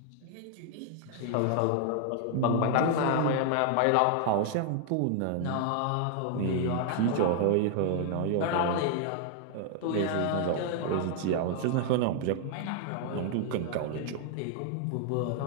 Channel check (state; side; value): different; both; correlation 0.00